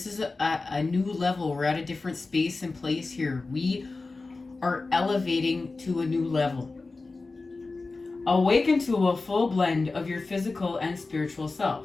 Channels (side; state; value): right; quieter; 3.6 dB